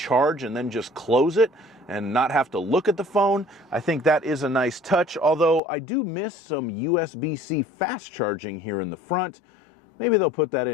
and then just close it and not have to look at the phone. I think that is a nice touch, although I do miss some USB-C fast charging here in the front. Maybe they'll put that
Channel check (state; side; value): drops out; right; at 5.6 s